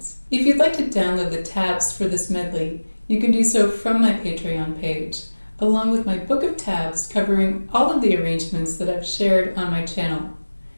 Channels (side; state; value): both; inverted; correlation -1.00